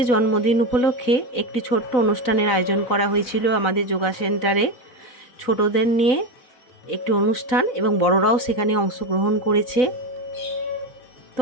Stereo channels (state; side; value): late; right; 4.0 ms